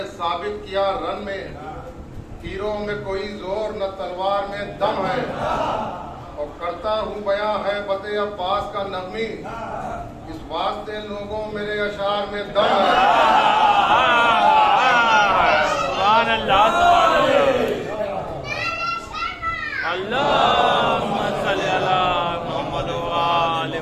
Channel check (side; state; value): both; identical; correlation 1.00